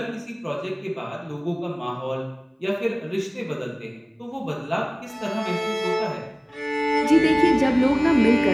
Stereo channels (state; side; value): identical; both; correlation 1.00